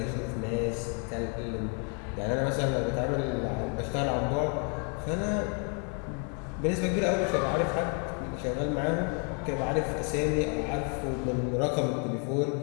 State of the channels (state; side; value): quieter; right; 38.9 dB